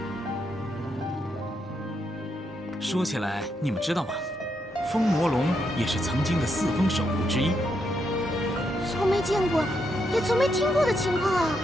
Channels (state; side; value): normal; both; correlation 0.80